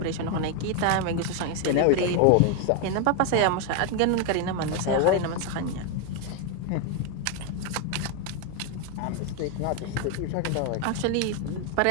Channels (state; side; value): different; both; correlation 0.01